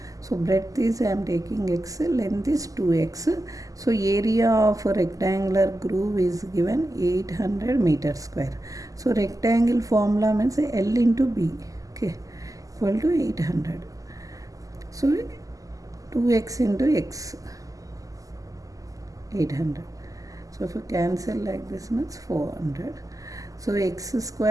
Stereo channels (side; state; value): left; late; 0.17 ms